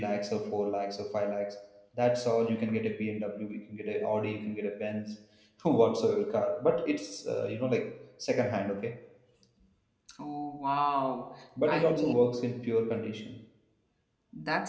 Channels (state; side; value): identical; both; correlation 1.00